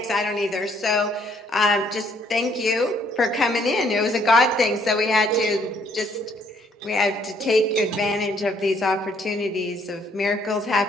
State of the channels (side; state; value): both; normal; correlation 0.66